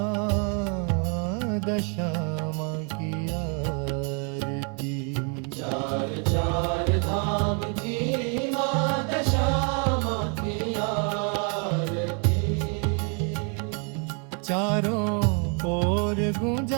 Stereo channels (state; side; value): quieter; left; 38.8 dB